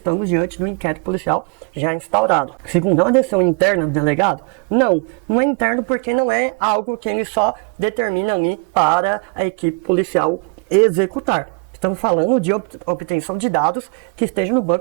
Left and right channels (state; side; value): quieter; left; 33.7 dB